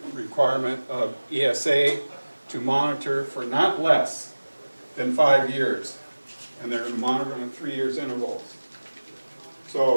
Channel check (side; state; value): both; inverted; correlation -1.00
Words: requirement of ESA to monitor for not less than 5 years, and they're going to monitor on 3 years intervals.